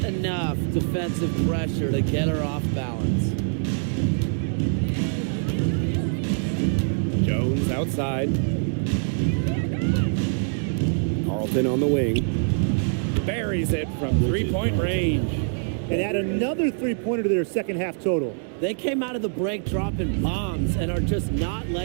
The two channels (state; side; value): silent; left; digital silence